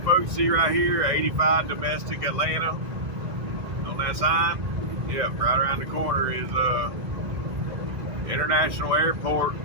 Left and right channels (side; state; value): left; late; 2.0 ms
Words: see right here, 85 domestic Atlanta on that sign. Yep, right around the corner is International Airport,